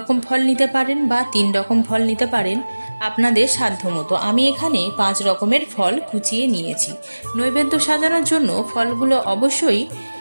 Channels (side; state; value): both; inverted; correlation -1.00